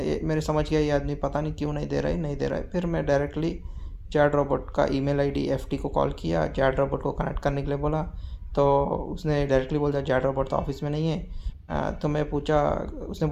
समझ गया ये आदमी पता नहीं क्यों नहीं दे रहा है। फिर मैं डायरेक्टली जैड रोबोट का ईमेल आईडी एफटी को कॉल किया, जैड रोबोट को कनेक्ट करने के लिए बोला। तो उसने डायरेक्टली बोल दिया जैड रोबोट तो ऑफिस में नहीं है। तो उसने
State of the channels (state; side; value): identical; both; correlation 1.00